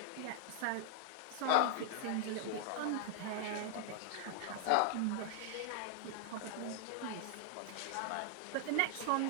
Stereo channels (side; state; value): both; different; correlation 0.00